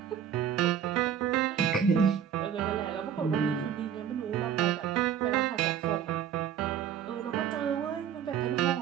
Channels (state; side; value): quieter; left; 8.9 dB